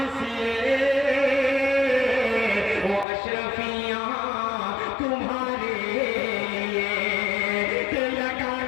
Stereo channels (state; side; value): drops out; right; at 3.1 s